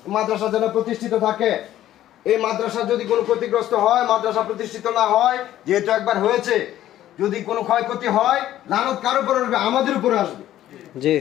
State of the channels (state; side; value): quieter; right; 12.9 dB